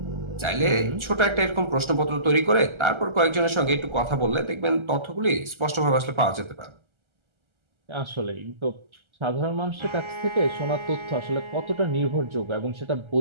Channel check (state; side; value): late; left; 1.3 ms